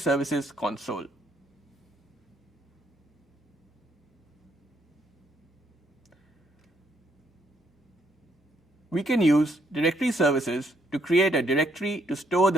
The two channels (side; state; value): both; normal; correlation 0.70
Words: console. We can use Directory Services to create a directory to store